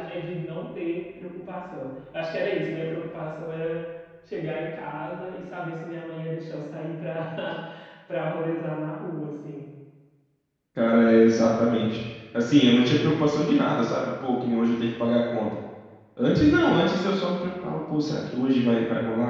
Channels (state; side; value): identical; both; correlation 1.00